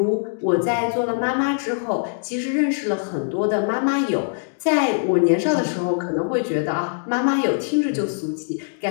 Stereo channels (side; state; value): right; silent; digital silence